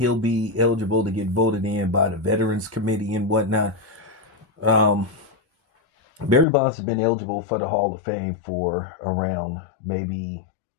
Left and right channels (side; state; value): right; drops out; at 6.5 s